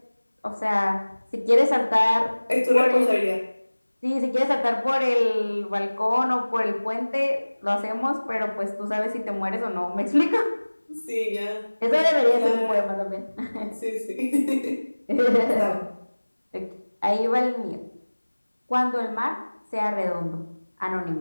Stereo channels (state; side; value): inverted; both; correlation -1.00